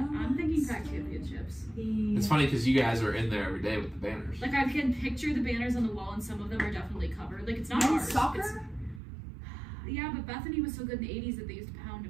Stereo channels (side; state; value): left; drops out; at 9.0 s